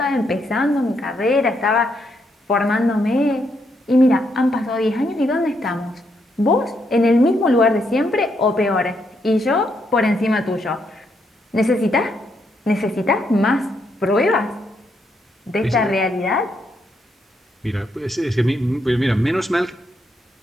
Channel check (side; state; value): both; normal; correlation 0.77